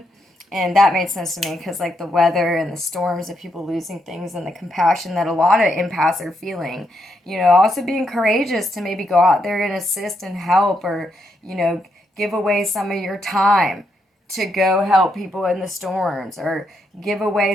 and that made sense to me because like the weather and the storms of people losing things and the compassion that a lot of empaths are feeling, also being courageous to maybe go out there and assist and help, or, give away some of your time to go help people in the storms, or give away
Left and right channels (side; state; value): both; normal; correlation 0.79